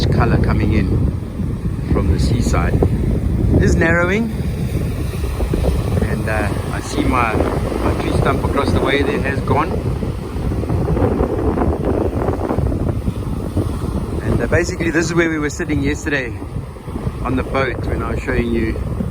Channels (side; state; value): both; identical; correlation 1.00